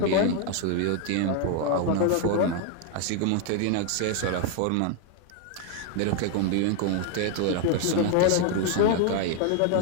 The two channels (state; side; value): different; both; correlation 0.00